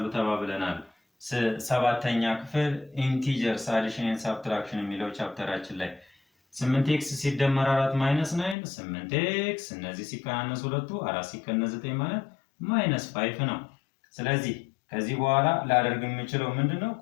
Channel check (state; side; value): drops out; right; at 8.6 s